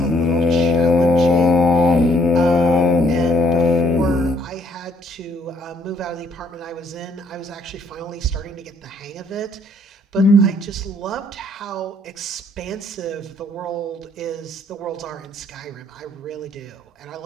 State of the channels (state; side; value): normal; both; correlation 0.65